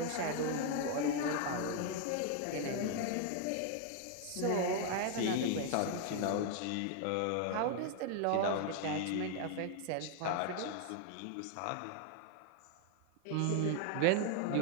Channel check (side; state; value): both; different; correlation 0.00